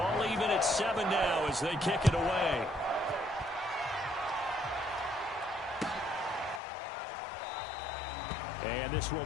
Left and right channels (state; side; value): drops out; right; at 6.6 s